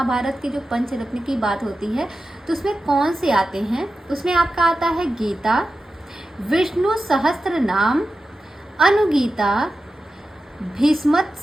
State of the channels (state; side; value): normal; both; correlation 0.93